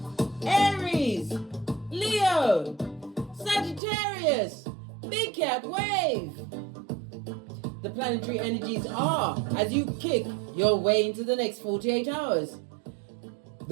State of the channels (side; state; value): left; drops out; at 3.8 s